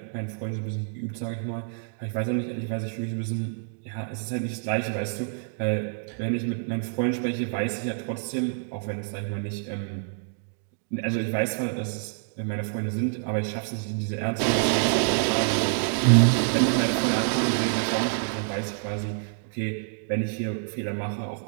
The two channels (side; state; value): left; silent; digital silence